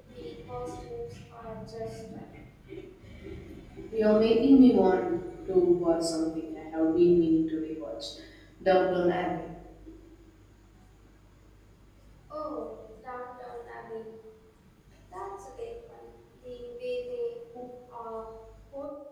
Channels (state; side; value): identical; both; correlation 1.00